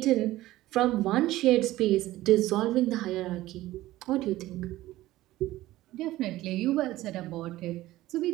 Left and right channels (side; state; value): left; quieter; 16.3 dB